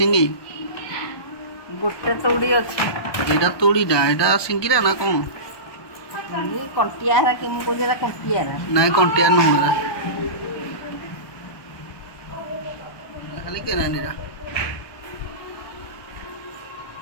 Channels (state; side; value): late; right; 1.2 ms